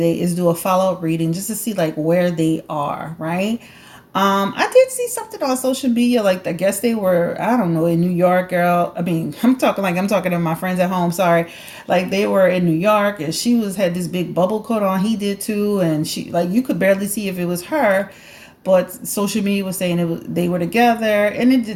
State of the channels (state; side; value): identical; both; correlation 1.00